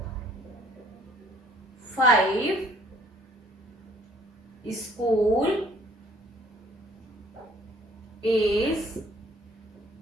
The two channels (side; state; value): both; normal; correlation 0.58